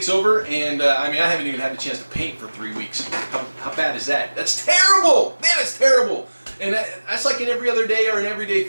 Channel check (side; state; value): both; inverted; correlation -1.00